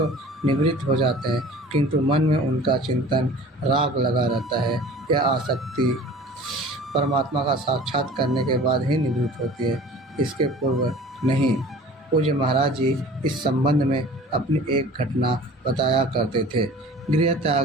निवृत्त हो जाते हैं, किंतु मन में उनका चिंतन राग लगा रहता है। यह आसक्ति परमात्मा का साक्षात करने के बाद ही निवृत्त होती है, इसके पूर्व नहीं। पूज्य महाराज जी इस संबंध में अपनी एक घटना बताया करते थे। गृह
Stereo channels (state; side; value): normal; both; correlation 0.44